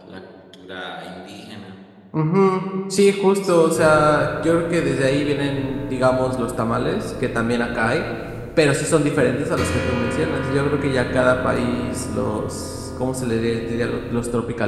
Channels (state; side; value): identical; both; correlation 1.00